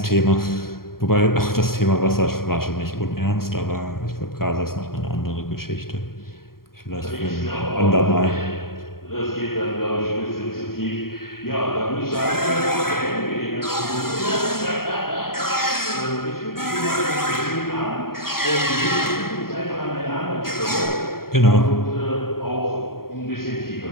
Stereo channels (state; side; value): late; right; 0.93 ms